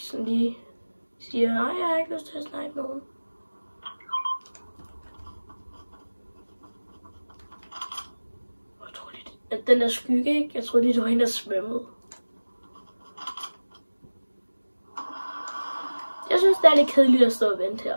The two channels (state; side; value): inverted; both; correlation -1.00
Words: lige siger, nej, jeg har ikke lyst til at snipe nogen. Jeg tror lige, at den der skygge, ikke? Jeg tror lige, det var hende, der svømmede. Jeg synes, det er lidt kedeligt at stå og vente